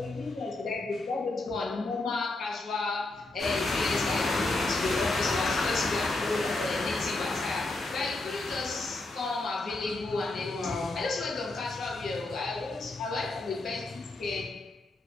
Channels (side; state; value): right; quieter; 3.0 dB